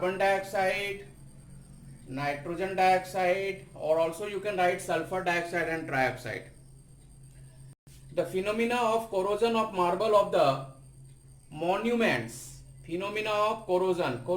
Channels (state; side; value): identical; both; correlation 1.00